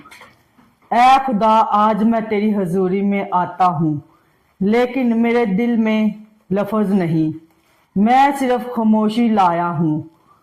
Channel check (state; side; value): identical; both; correlation 1.00